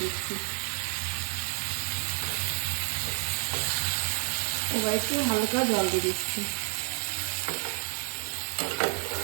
দিচ্ছি। এবার একটু হালকা জল দিয়ে দিচ্ছি।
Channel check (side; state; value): left; silent; digital silence